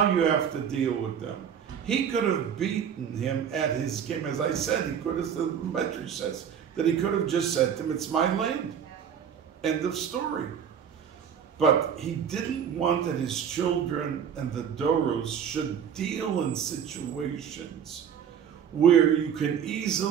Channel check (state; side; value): quieter; left; 8.1 dB